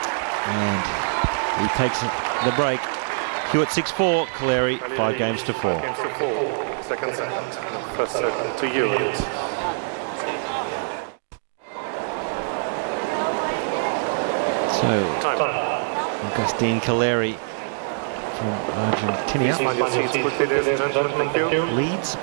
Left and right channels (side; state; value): left; silent; digital silence